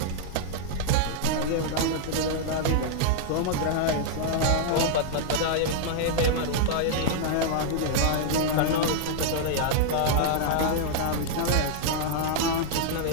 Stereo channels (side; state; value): both; different; correlation -0.01